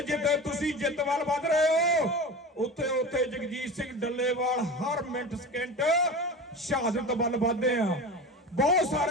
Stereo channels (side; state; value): both; normal; correlation 0.30